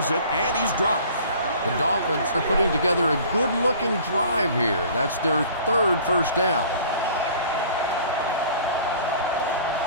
it, and he's dropped. The Dolphins are putting together a good-looking drive here. That's their 3rd first down.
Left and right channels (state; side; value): inverted; both; correlation -0.48